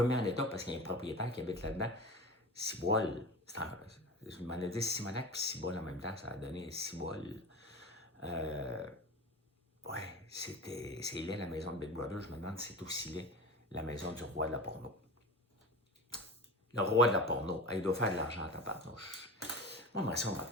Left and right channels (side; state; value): both; normal; correlation 0.32